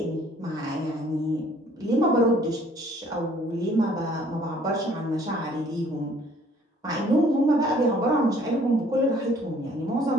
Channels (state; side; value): normal; both; correlation 0.58